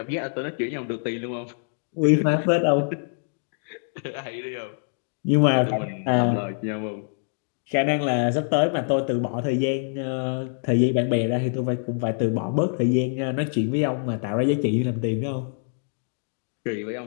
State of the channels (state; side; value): silent; right; digital silence